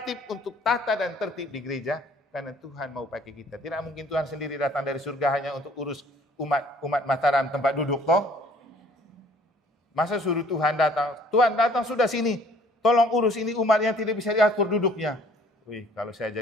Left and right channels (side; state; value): both; normal; correlation 0.57